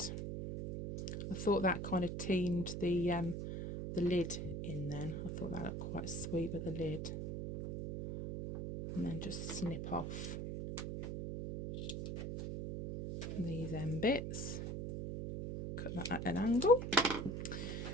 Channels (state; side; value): noise; right; hum, 4 dB below the sound